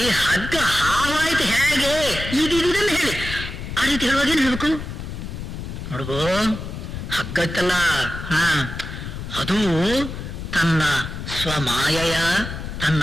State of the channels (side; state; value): left; noise; rumble, 8 dB below the sound